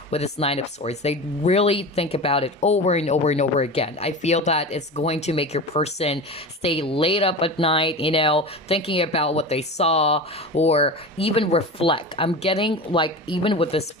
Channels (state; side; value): normal; both; correlation 0.29